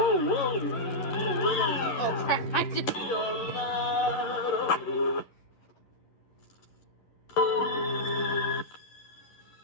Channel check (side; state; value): right; late; 11 ms